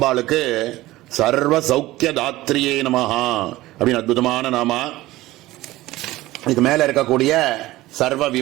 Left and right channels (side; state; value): left; quieter; 17.4 dB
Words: சர்வ சௌக்கிய தாத்ரியே நமஹா அப்படின்னு அற்புதமான நாமா. இதுக்கு மேல இருக்கக்கூடிய சர்வ